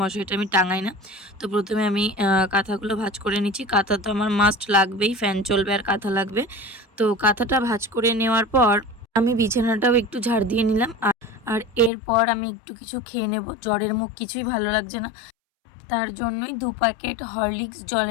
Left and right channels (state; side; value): drops out; right; at 11.9 s